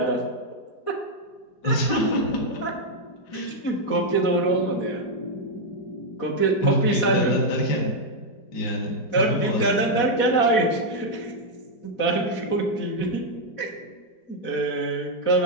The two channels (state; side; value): late; right; 4.2 ms